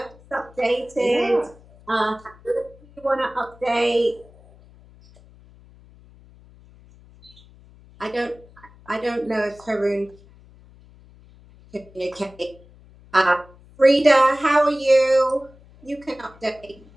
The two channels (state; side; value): noise; left; hum, 25 dB below the sound